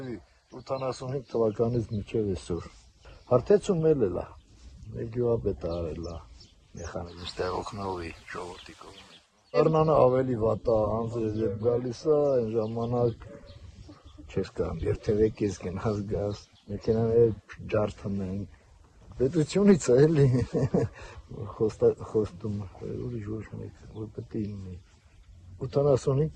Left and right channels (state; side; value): identical; both; correlation 1.00